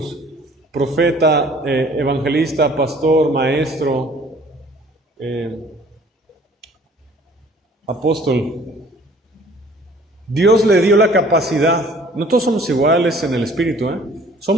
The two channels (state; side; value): normal; both; correlation 0.54